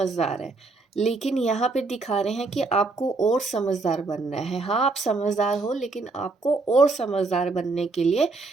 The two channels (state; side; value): quieter; left; 3.6 dB